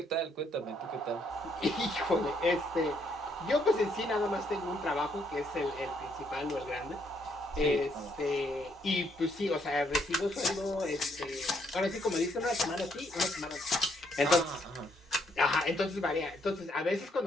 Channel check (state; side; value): normal; both; correlation 0.72